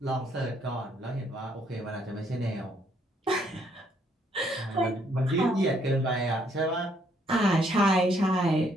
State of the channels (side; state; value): both; normal; correlation 0.69